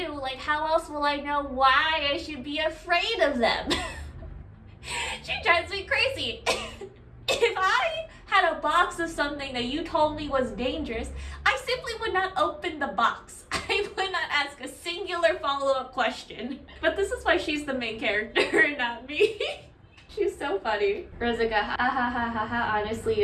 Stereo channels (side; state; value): both; identical; correlation 1.00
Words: Like, how else will I know why I should be afraid of them? She drives me crazy. If I had a box of something that you told me was dangerous, I simply would not open the box. I would not ask a singular follow-up question. But this is why she's the main character, not me. She's so funny. Rosica, ha ha ha ha ha. Honestly,